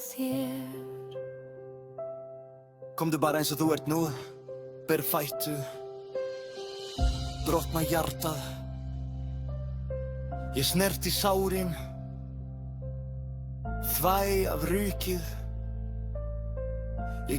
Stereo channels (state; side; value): identical; both; correlation 1.00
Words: Komdu bara eins og þú ert nú, berfættu, brotna hjartað. Ég snerti sárin, þvæ af rykið.